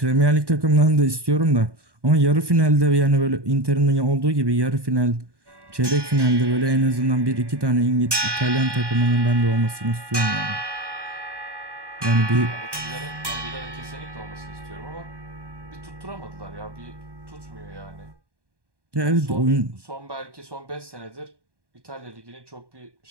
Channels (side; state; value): left; late; 1.2 ms